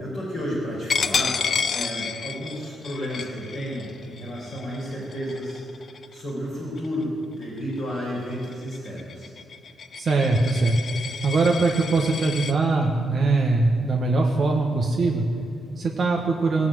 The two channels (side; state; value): both; normal; correlation 0.81